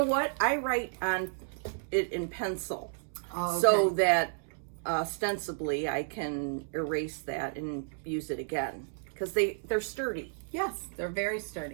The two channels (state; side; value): silent; left; digital silence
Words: what? I write on it in pencil. Oh, okay. So that ostensibly I can erase that and use it again. Because they're sturdy. Yes, they're very